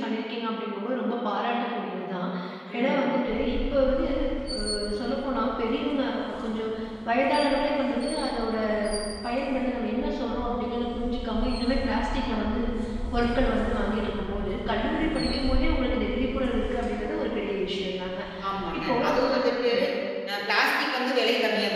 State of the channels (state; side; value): identical; both; correlation 1.00